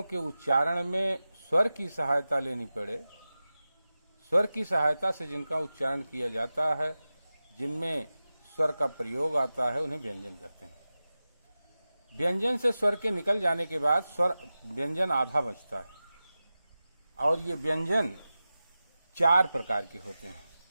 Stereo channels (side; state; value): both; inverted; correlation -0.95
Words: के उच्चारण में स्वर की सहायता लेनी पड़े, स्वर की सहायता से जिनका उच्चारण किया जाता है, जिनमें स्वर का प्रयोग आता है, उन्हें व्यंजन कहते हैं। व्यंजन से स्वर के निकल जाने के बाद स्वर व्यंजन आधा बचता है, और ये व्यंजन 4 प्रकार के होते हैं।